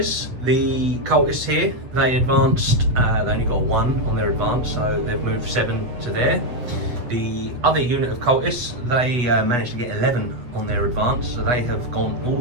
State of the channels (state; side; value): late; left; 8.2 ms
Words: the cultists here, they advanced, they only got 1 on their advance, so they've moved 7 to there. The other unit of cultists, they managed to get 11 on their advance, so they have gone all